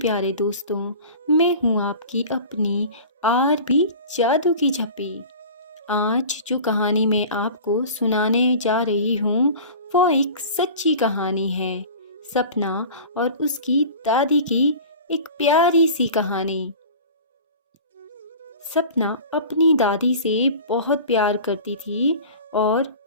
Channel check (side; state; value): both; inverted; correlation -0.38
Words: दोस्तों। मैं हूँ आपकी अपनी आरबी जादू की झप्पी। आज जो कहानी मैं आपको सुनाने जा रही हूँ वो एक सच्ची कहानी है। सपना और उसकी दादी की एक प्यारी सी कहानी। सपना अपनी दादी से बहुत प्यार करती थी और